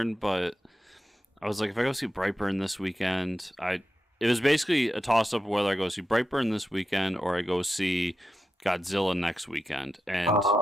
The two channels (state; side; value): normal; both; correlation 0.90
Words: but I was like, if I go see Brightburn this weekend, it was basically a toss-up whether I go see Brightburn this weekend or I go see Godzilla next weekend. And